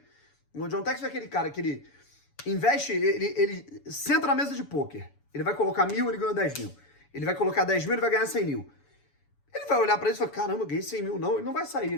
O John Textor é aquele cara que ele investe, ele senta na mesa de pôquer. Ele vai colocar 1.000, ele ganha 10 mil. Ele vai colocar 10 mil, ele vai ganhar 100 mil. Ele vai olhar pra isso e falar, caramba, ganhei 100 mil. Não, ele não vai sair.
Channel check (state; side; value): late; right; 7.0 ms